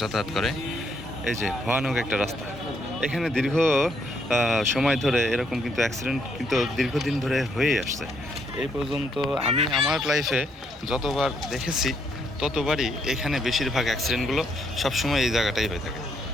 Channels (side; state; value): both; normal; correlation 0.73